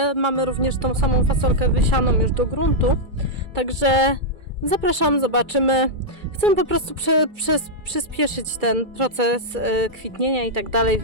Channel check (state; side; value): late; left; 2.3 ms